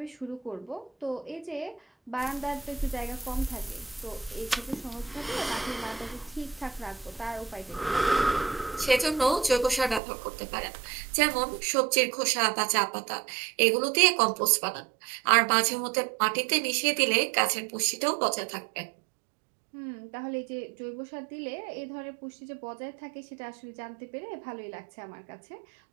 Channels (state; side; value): drops out; left; at 10.0 s